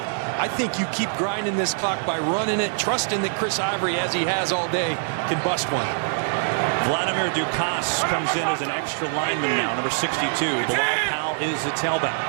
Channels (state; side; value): silent; left; 63 dB below the other